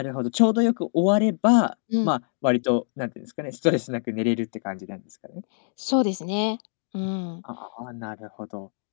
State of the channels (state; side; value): silent; right; digital silence